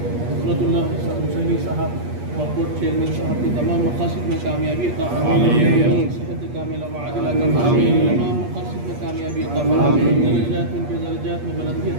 हजरतुल्लाह हुसैनी साहब वक्फ बोर्ड चेयरमैन साहब की तमाम मकासद में कामयाबी अता फरमाएं, सेहत कामिला व आजिला अता फरमाएं, तमाम मकासद में कामयाबी अता फरमाएं, दर्जात में दर्जात में बुलंदी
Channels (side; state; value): left; late; 8.5 ms